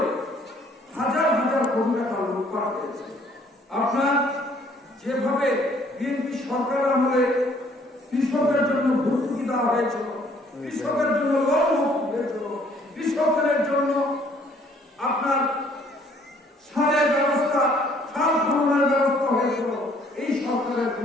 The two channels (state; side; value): normal; both; correlation 0.61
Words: হাজার কোটি টাকা লুটপাট হয়েছে। আপনার যেভাবে বিএনপি সরকার আমলে কৃষকের জন্য ভর্তুকি দেওয়া হয়েছিল, কৃষকের জন্য লোন মুক্তি হয়েছিল, কৃষকের জন্য আপনার সারের ব্যবস্থা, সার খননের ব্যবস্থা হয়েছিল, এই সরকারের